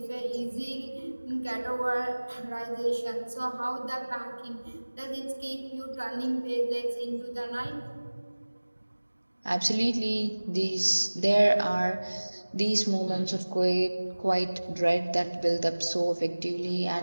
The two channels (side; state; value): both; inverted; correlation -1.00